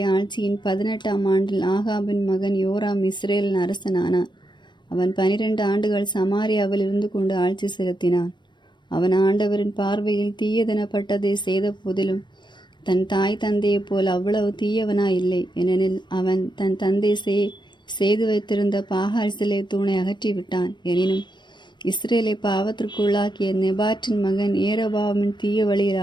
ஆட்சியின் 18ஆம் ஆண்டில் ஆகாபின் மகன் யோராம் இஸ்ரேலின் அரசனானான். அவன் 12 ஆண்டுகள் சமாரியாவில் இருந்து கொண்டு ஆட்சி செலுத்தினான். அவன் ஆண்டவரின் பார்வையில் தீயதெனப்பட்டதை செய்த போதிலும் தன் தாய் தந்தையைப் போல் அவ்வளவு தீயவனாயில்லை. ஏனெனில் அவன் தன் தந்தை செய்து வைத்திருந்த பாகால் சிலை தூணை அகற்றிவிட்டான். எனினும் இஸ்ரேலை பாவத்திற்குள்ளாக்கிய நெபாற்றின் மகன் ஏரோபாமின் தீய வழியில்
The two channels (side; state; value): right; late; 0.22 ms